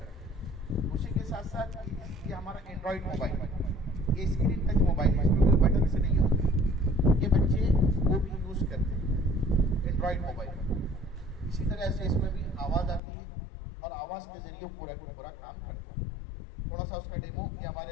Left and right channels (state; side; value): drops out; right; at 13.0 s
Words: हैं। उसी के साथ साथ ये हमारा एंड्रॉयड मोबाइल, ये स्क्रीन टच मोबाइल है, इसमें कोई बटन से नहीं होता। ये बच्चे वो भी यूज़ करते हैं एंड्रॉयड मोबाइल। इसी तरह से इसमें भी आवाज़ आती है और आवाज़ के ज़रिए पूरा का पूरा काम करता है। थोड़ा सा उसका डेमो कि